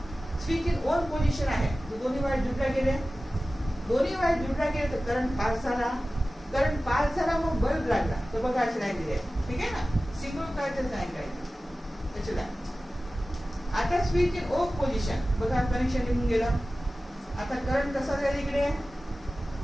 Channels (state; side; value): normal; both; correlation 0.96